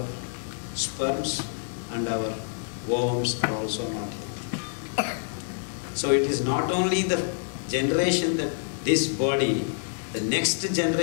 sperms and our worms are also not healthy. So it is not only the generation that this body, the next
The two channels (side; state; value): right; silent; digital silence